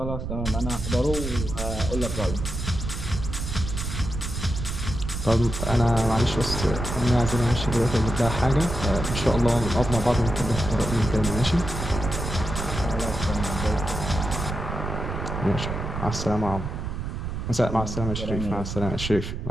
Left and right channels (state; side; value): noise; right; rumble, 5 dB below the sound